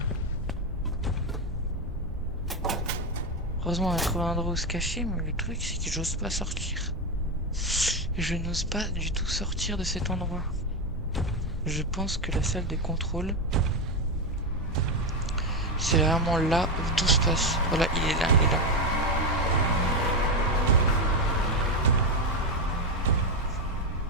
Heureusement on a trouvé un endroit où se cacher, mais le truc c'est que j'ose pas sortir. Je n'ose pas du tout sortir de cet endroit. Je pense que la salle de contrôle, c'est vraiment là où tout se passe. Voilà, il est là, il est là.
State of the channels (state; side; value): normal; both; correlation 0.09